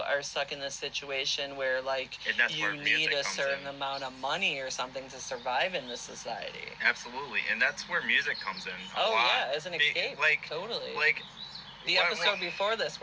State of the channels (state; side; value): identical; both; correlation 1.00